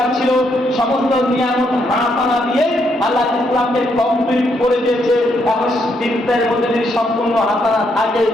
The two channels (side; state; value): both; normal; correlation 0.75